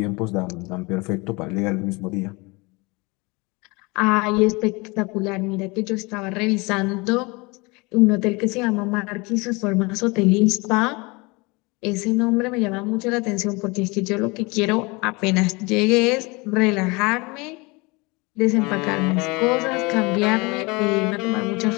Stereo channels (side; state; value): right; quieter; 26.2 dB